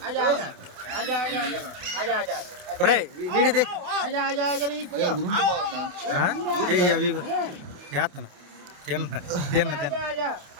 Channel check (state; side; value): late; left; 28 ms